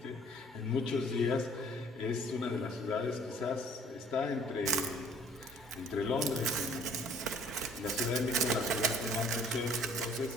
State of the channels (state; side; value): normal; both; correlation 0.56